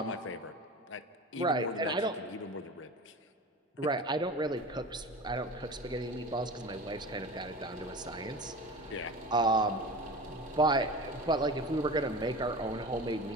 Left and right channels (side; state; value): both; normal; correlation 0.33